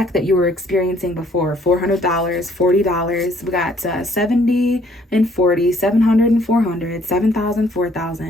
that you were experiencing before. $400, $40. We got 70 and 40, 700 and 400, 7,000,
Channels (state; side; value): normal; both; correlation 0.63